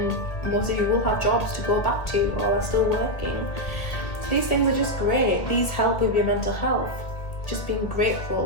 most of you will have jobs to go back to or are still working. So these things are just great. These help with your mental health. Just being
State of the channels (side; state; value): right; late; 2.0 ms